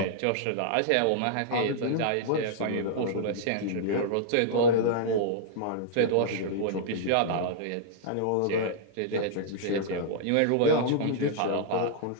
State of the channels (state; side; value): different; both; correlation -0.02